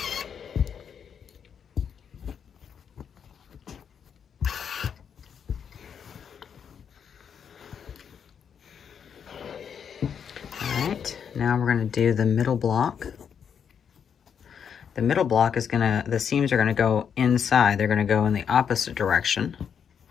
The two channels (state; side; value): quieter; right; 7.5 dB